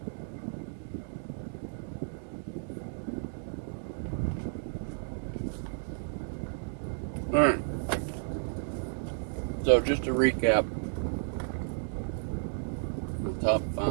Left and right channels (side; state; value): left; silent; digital silence